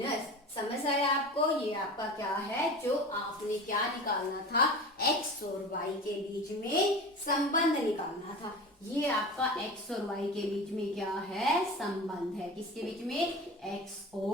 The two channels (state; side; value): normal; both; correlation 0.33